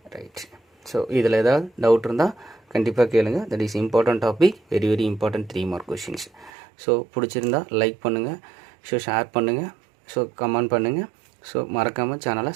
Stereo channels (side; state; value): left; drops out; at 6.5 s